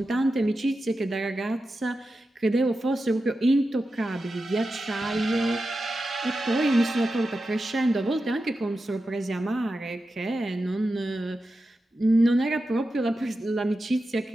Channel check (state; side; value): normal; both; correlation 0.91